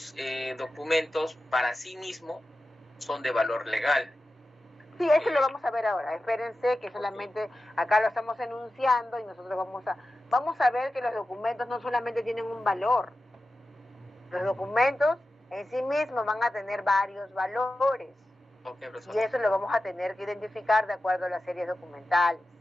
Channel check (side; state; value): both; normal; correlation 0.93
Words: documentos para sí mismo son de valor legal. Sí, eso lo vamos a ver ahora. Espérense que solamente acá lo estamos enunciando y nosotros vamos a ver que los documentos no solamente tienen un valor. Los documentos en sí mismos van a tener varios valores. Ok, profesor. Y eso lo vamos a tener que identificar de acuerdo a las series documentales.